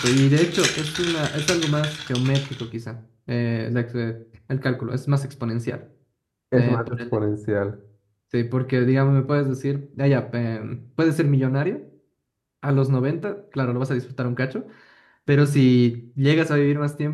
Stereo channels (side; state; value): both; identical; correlation 1.00